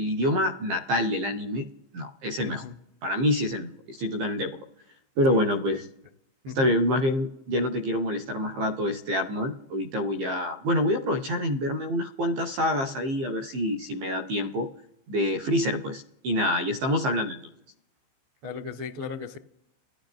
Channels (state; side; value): late; left; 15 ms